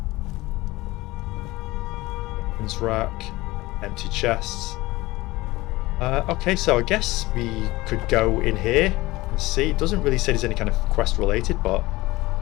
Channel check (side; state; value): right; quieter; 19.8 dB